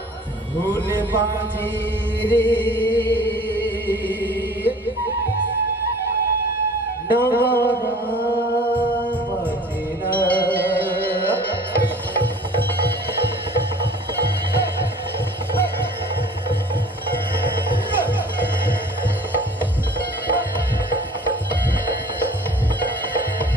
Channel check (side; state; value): both; normal; correlation 0.48